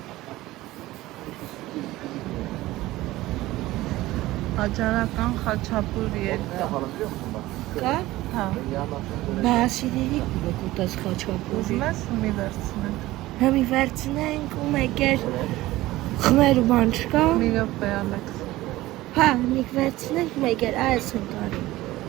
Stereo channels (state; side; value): quieter; left; 17.3 dB